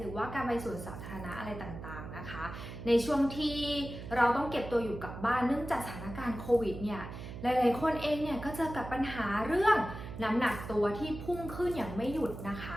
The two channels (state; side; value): noise; right; hum, 10 dB below the sound